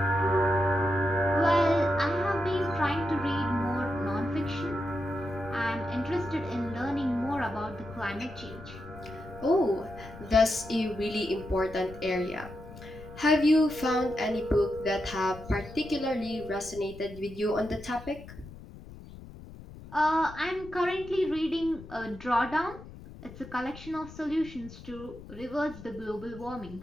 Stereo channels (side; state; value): left; noise; rumble, 16 dB below the sound